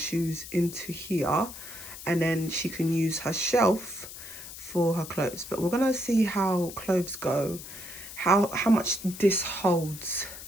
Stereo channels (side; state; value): left; noise; hiss, 12 dB below the sound